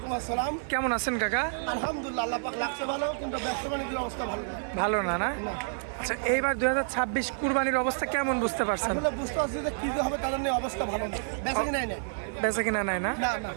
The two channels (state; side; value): silent; left; 58 dB below the other